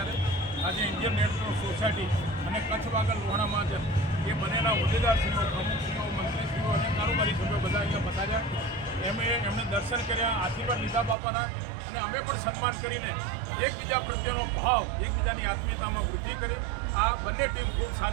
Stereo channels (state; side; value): drops out; left; at 11.2 s